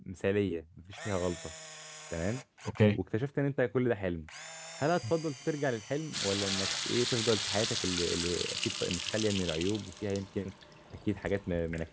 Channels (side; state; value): both; identical; correlation 1.00